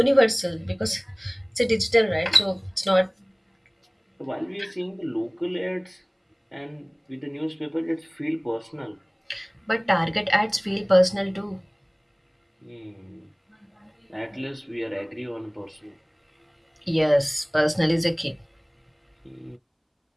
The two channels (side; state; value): both; identical; correlation 1.00